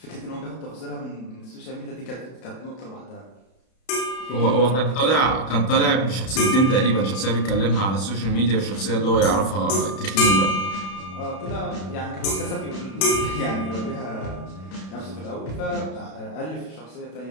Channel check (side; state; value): right; late; 32 ms